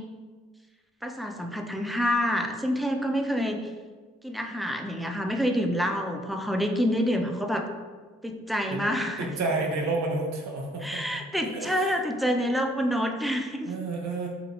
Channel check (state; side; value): normal; both; correlation 0.69